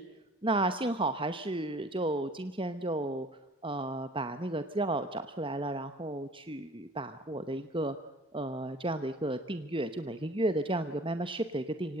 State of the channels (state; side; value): normal; both; correlation 0.48